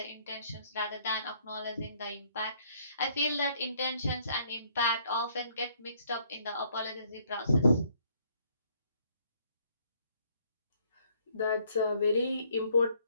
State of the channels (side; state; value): both; inverted; correlation -0.65